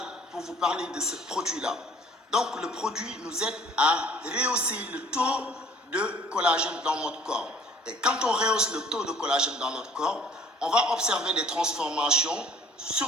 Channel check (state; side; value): normal; both; correlation 0.52